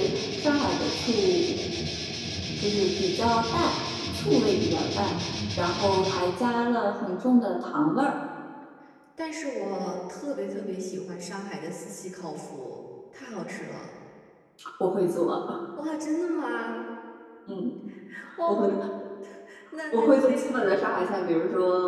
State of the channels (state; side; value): identical; both; correlation 1.00